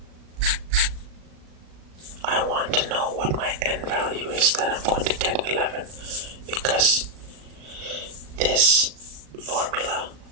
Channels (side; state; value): left; late; 37 ms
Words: I want to know what my n value is that I'm going to get 11, because this formula,